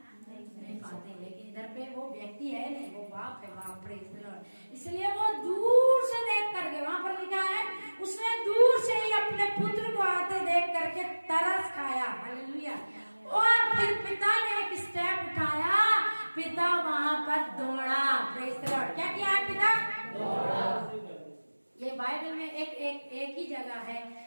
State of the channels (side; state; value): both; inverted; correlation -1.00